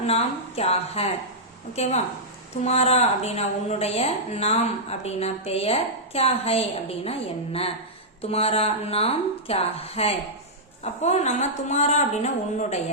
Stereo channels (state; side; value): normal; both; correlation -0.10